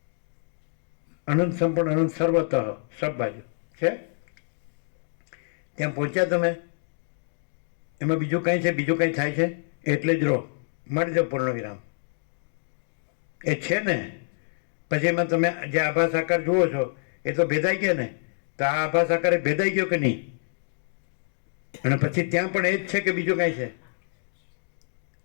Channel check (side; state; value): right; silent; digital silence